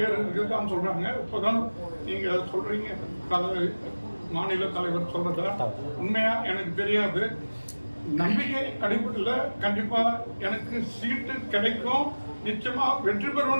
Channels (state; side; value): inverted; both; correlation -1.00